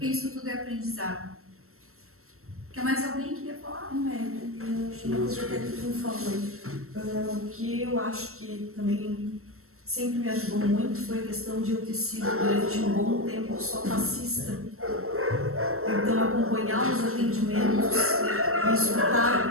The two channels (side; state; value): left; late; 0.63 ms